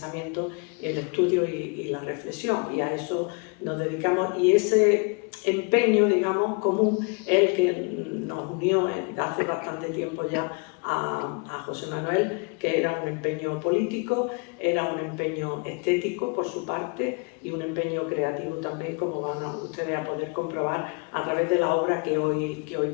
el estudio y la reflexión, y a eso nos dedicamos. Y ese empeño, digamos, común es el que nos unió hace bastante tiempo ya a José Manuel, que era un empeño político, era un empeño estético por su parte y un empeño creativo también, como van ustedes a poder comprobar a través de la obra que hoy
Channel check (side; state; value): right; quieter; 34.3 dB